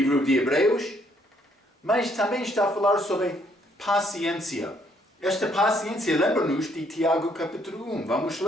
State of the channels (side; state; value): both; normal; correlation 0.68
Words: de Hebreus, mas também está a falar sobre paciência. Esta paciência lembra-nos de Tiago capítulo 1. Vamos